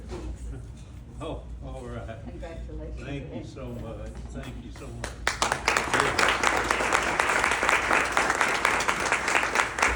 Oh, all right. Congratulations. Thank you so much. Thank you so much.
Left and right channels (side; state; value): both; identical; correlation 1.00